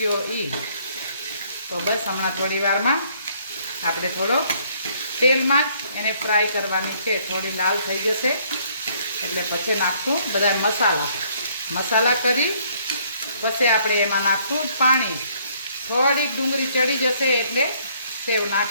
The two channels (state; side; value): inverted; both; correlation -0.64